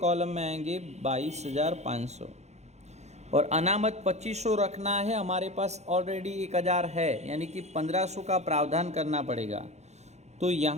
में आएंगे 22,500, और अनामत 2500 रखना है। हमारे पास ऑलरेडी 1000 है, यानी कि 1500 का प्रावधान करना पड़ेगा। तो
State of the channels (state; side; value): late; left; 0.32 ms